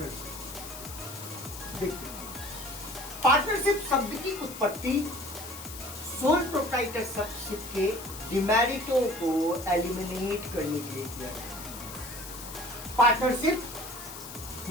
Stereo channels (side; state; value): left; noise; hiss, 12 dB below the sound